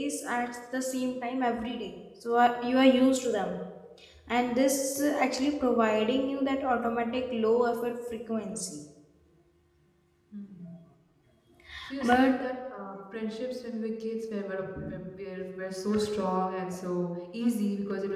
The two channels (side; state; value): both; identical; correlation 1.00